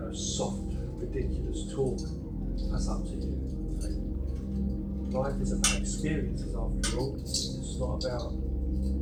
soft, ridiculous talk, that's up to you. Okay? Life is about experiences, after all. It's not about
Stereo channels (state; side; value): identical; both; correlation 1.00